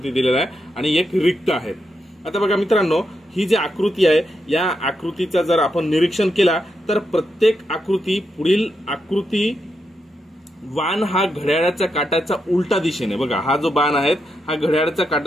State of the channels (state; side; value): normal; both; correlation 0.83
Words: दिलेला आहे आणि एक रिक्त आहे. आता बघा मित्रांनो, ही जी आकृती आहे या आकृतीचा जर आपण निरीक्षण केला तर प्रत्येक आकृती पुढील आकृती बाण हा घड्याळाच्या काटाच्या उलटा दिशेने, बघा हा जो बाण आहे हा घड्याळाच्या